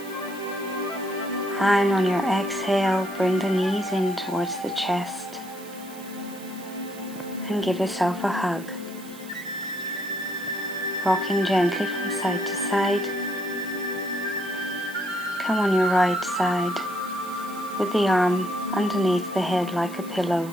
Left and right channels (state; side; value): noise; right; hiss, 18 dB below the sound